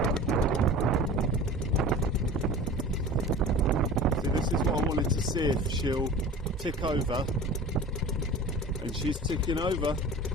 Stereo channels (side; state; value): both; normal; correlation 0.39